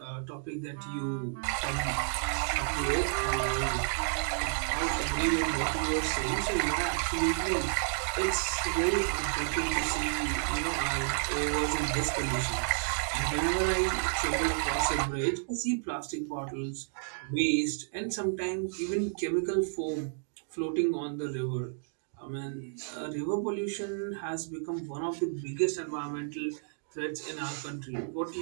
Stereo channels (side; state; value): left; silent; digital silence